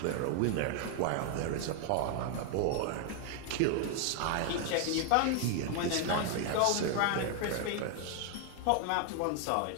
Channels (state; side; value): different; both; correlation 0.00